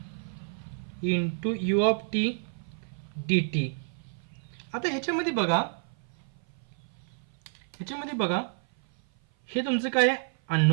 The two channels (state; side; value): silent; left; 56 dB below the other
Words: into u of t dt. आता ह्याच्यामध्ये बघा हे तुमचं काय आहे,